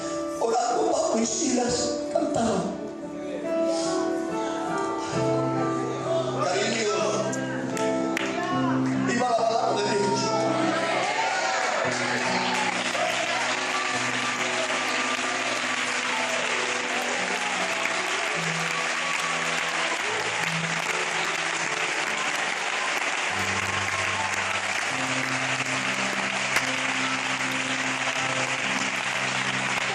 orando Pablo y Silas cantaban. Cariño, viva la palabra de Dios.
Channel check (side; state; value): both; identical; correlation 1.00